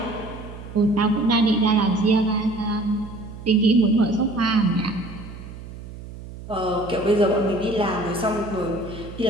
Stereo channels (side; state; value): right; noise; hum, 13 dB below the sound